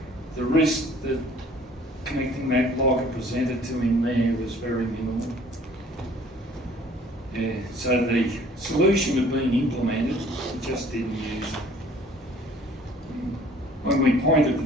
The risk that connecting that logger presented to him there was very minimal. So the solution had been implemented, it just didn't use it. When we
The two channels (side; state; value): both; normal; correlation 0.54